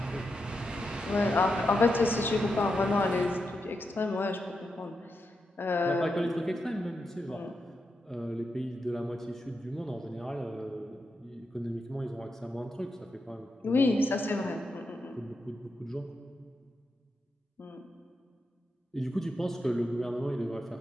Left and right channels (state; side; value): normal; both; correlation 0.86